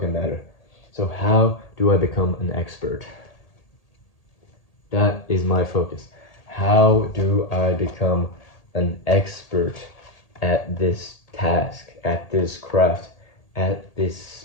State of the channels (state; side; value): late; right; 1.8 ms